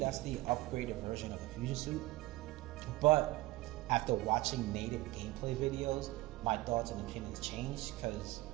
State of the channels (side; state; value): left; quieter; 19.5 dB